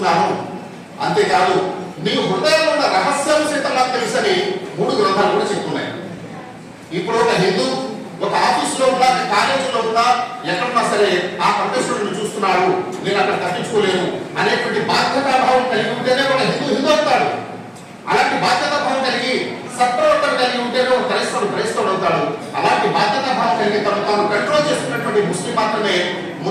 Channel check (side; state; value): both; identical; correlation 1.00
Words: అంతేకాదు మీ హృదయంలో ఉన్న రహస్యం సైతం నాకు తెలుసని 3 గ్రంథాలు కూడా చెప్తున్నాయి. ఇప్పుడు ఒక హిందూ ఒక ఆఫీసులో ఉన్నా, కాలేజీలో ఉన్నా, ఎక్కడున్నా సరే ఆ పరమేశ్వరుడిని చూస్తున్నాడు, నేను అక్కడ తప్పించుకోలేను అనేటువంటి బాధ్యతాభావం కలిగి ఉంటేనే ఒక హిందూ అవుతాడు. అలాంటి బాధ్యతాభావం కలిగి సత్ప్రవర్తన కలిగి ఉంటేనే ఒక క్రైస్తవుడు అవుతాడు. అలాంటి బాధ్యతాభావం కలిగి తాను కంట్రోల్ చేసుకున్నటువంటి ముస్లిం మాత్రమే